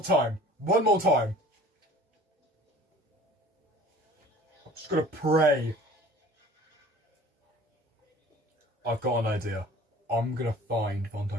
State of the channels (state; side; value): normal; both; correlation 0.47